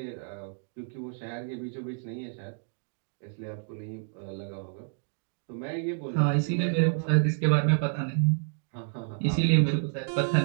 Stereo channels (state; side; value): silent; left; digital silence